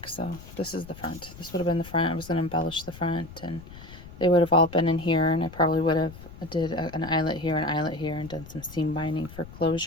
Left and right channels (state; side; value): noise; left; rumble, 16 dB below the sound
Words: So this is the front. This would have been the front. I was going to embellish the front, and they would have all been in here, and I probably would have did an eyelet here, and done some seam binding for